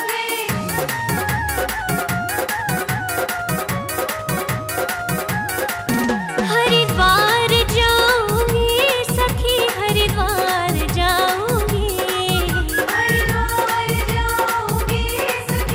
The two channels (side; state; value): both; identical; correlation 1.00